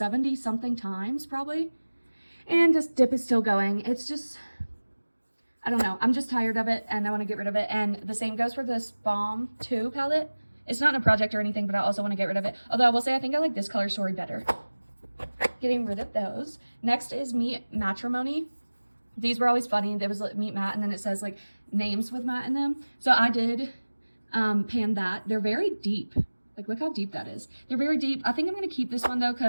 something times probably, and this dip is still going. It's just, I don't know, I'm just tired of it and I wanna get rid of it. And the same goes for this Balm 2 palette. It's not in a project or anything, but I also wanna get rid of it. Although I will say I think I like this color story better. Getting rid of those. Next is Meet Matrimony. These were always funny. There was like Meet Matt, and then it says like names with Matt in them. So I did pan that. They're very deep. Like look how deep that is. They're very deep. I think I'm gonna keep this one though,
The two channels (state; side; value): inverted; both; correlation -1.00